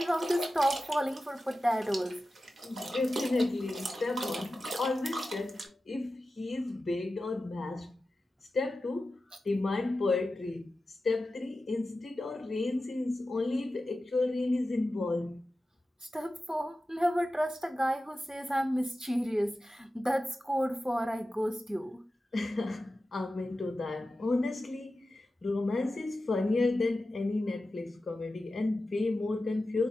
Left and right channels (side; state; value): both; normal; correlation 0.93